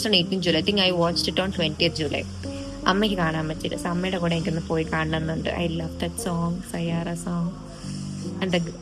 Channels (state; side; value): identical; both; correlation 1.00